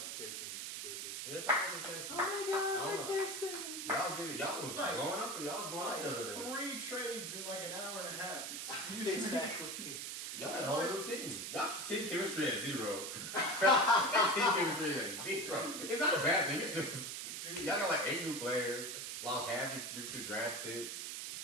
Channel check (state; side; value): noise; right; hiss, 5 dB below the sound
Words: your Texans. Jacob. Yeah, it's almost a Texans. Oh my God, Oh. Texans. Y'all did it. Y'all was Like- going up, or y'all was going up the other day. 3 trades in like an hour and a half. Excuse me. Exactly. Y'all had a whole new team. Y'all team chemistry at 0. Team chemistry at 0. It's not a bad thing. It's just Dude, y'all got like 8 new players. Lost half your future draft picks.